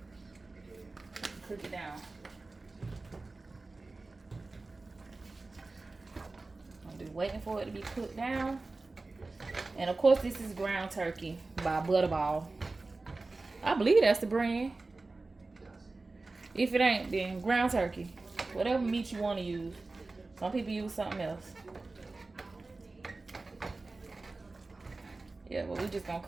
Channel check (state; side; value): quieter; left; 3.4 dB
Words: Cook it down. I'm just waiting for it to be cooked down. And of course, this is ground turkey by Butterball. I believe that's the brand. If it ain't, then ground turkey. Whatever meat you want to use. Some people use something else. Yeah, but we're just gonna